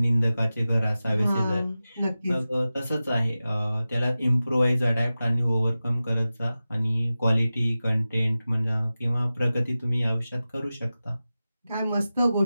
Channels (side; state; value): both; inverted; correlation -0.95